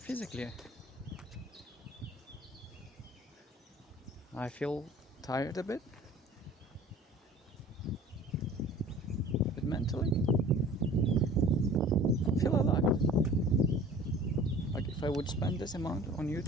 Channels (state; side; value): normal; both; correlation 0.46